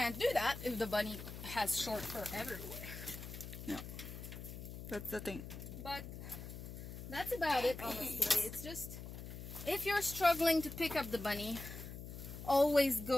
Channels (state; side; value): noise; left; hum, 10 dB below the sound